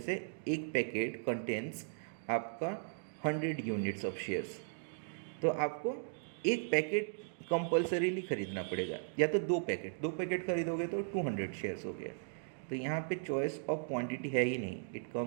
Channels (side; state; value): left; silent; digital silence